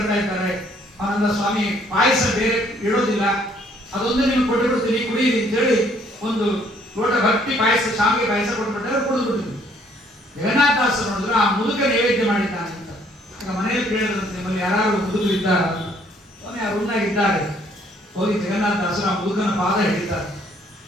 ಇದ್ದಾರೆ, ಅವನಂದ ಸ್ವಾಮಿ ಪಾಯಸ ಬೇರೆ ಇಡೋದಿಲ್ಲ, ಅದೊಂದೇ ನಿಮ್ಗೆ ಕೊಟ್ಟುಬಿಡ್ತೀನಿ ಕುಡಿಯಿರಿ ಅಂತೇಳಿ ಒಂದು ಲೋಟ ಭಕ್ತಿ ಪಾಯಸ, ಶಾವಿಗೆ ಪಾಯಸ ಕೊಟ್ಬಿಟ್ರೆ ಕುಡಿದ್ಬಿಟ್ಟಿದ್ವಿ. ಜಗನ್ನಾಥದಾಸರು ನೋಡಿದ್ರು ಆ ಮುದುಕ ನೈವೇದ್ಯ ಮಾಡಿದ್ದಾನೆ ಅಂತ. ಮನೆಯಲ್ಲಿ ಕೇಳಿದ್ರಂತೆ, ನಿಮ್ಮಲ್ಲಿ ಯಾರು ಮುದುಕರು ಇದ್ದಾರ? ಸ್ವಾಮಿ ಆ ರೂಮ್ನಾಗ ಇದ್ದಾರೆ. ಹೋಗಿ ಜಗನ್ನಾಥದಾಸರು ಆ ಮುದುಕನ ಪಾದ ಹಿಡಿತಾರೆ.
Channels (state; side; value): normal; both; correlation 0.64